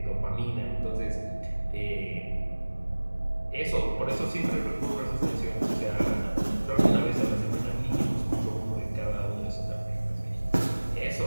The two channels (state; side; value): inverted; both; correlation -1.00